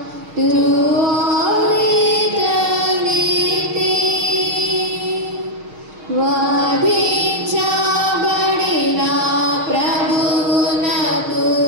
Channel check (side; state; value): left; late; 6.5 ms